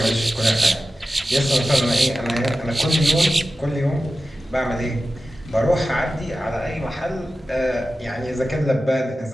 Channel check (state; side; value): normal; both; correlation 0.94